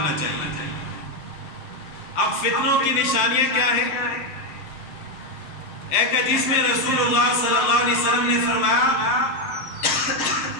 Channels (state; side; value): late; right; 6.6 ms